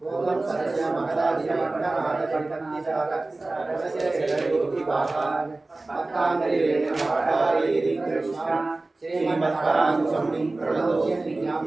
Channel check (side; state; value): left; quieter; 3.1 dB